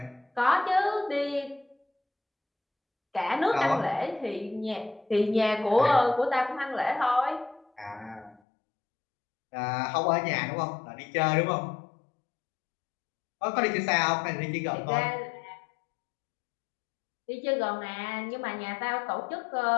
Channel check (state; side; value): drops out; right; at 8.4 s